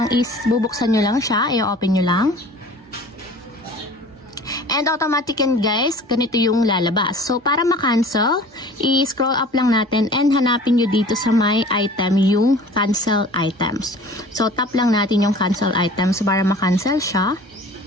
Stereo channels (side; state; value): both; normal; correlation 0.45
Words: is, bubuksan nyo lang siya, i-open nyo lang. And automatic yan guys, ganito yung lalabas. So, para ma-cancel, i-scroll up lang natin and hanapin nyo dito sa my item yung cancel items. So, tap lang natin yung cancel items para ma-cancel siya.